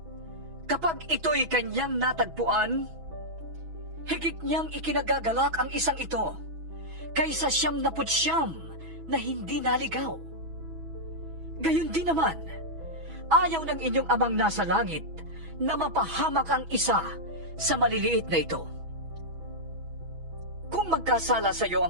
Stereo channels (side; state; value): left; late; 6.1 ms